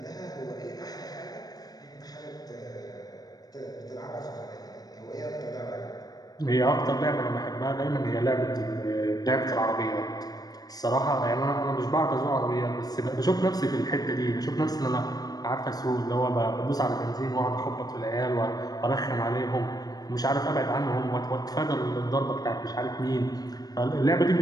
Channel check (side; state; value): right; late; 0.19 ms